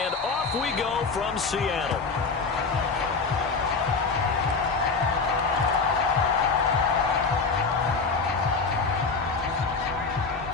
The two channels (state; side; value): quieter; right; 4.6 dB